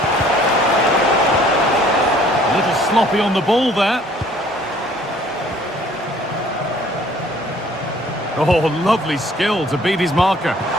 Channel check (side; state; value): both; normal; correlation 0.57